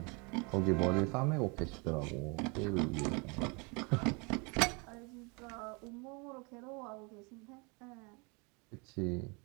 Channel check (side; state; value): left; quieter; 30.7 dB